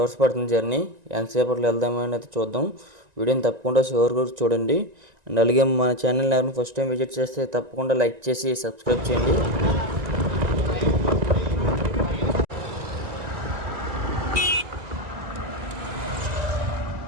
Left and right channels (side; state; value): left; late; 1.9 ms